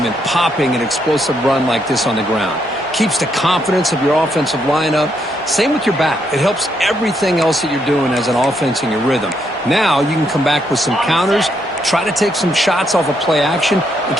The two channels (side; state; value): both; normal; correlation 0.76